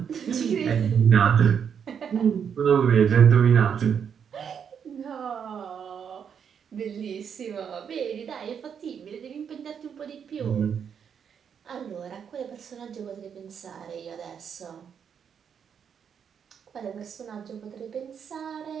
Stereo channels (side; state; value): left; quieter; 7.5 dB